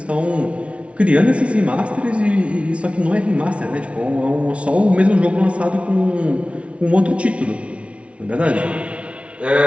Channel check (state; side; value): late; left; 0.061 ms